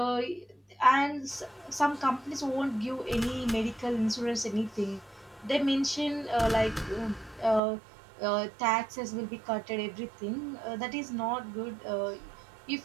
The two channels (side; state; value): left; drops out; at 7.6 s